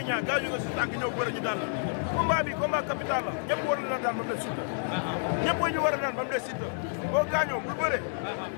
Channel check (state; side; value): silent; right; digital silence